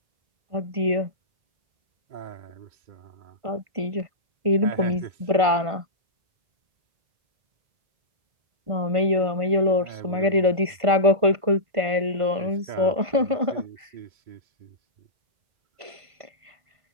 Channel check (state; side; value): late; left; 1.5 ms